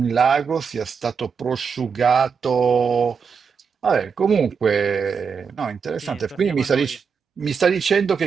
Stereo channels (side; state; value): left; quieter; 6.0 dB